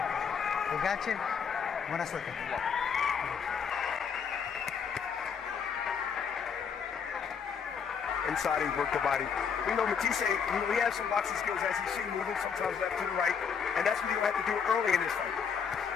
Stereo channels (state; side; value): quieter; right; 6.7 dB